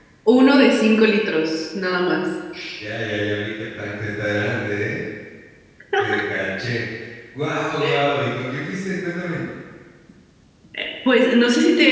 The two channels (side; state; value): both; identical; correlation 1.00